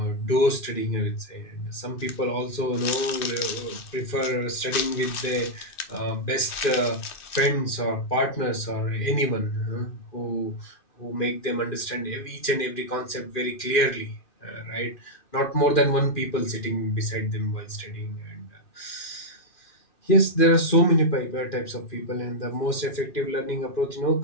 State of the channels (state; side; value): late; right; 2.6 ms